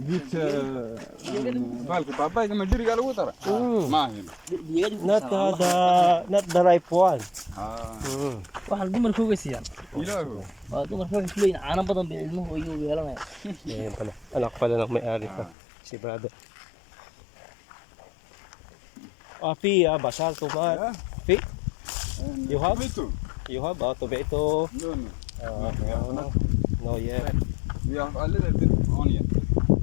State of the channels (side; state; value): right; drops out; at 15.6 s